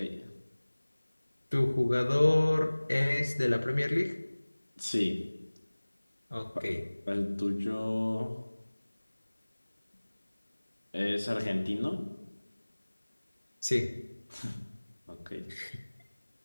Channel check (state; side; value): inverted; both; correlation -1.00